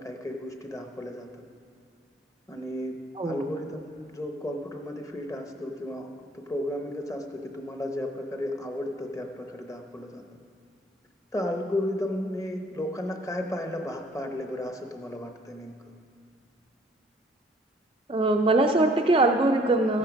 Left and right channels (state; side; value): normal; both; correlation 0.58